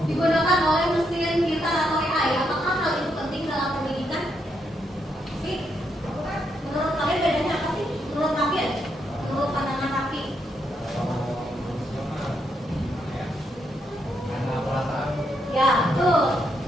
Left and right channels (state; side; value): normal; both; correlation 0.78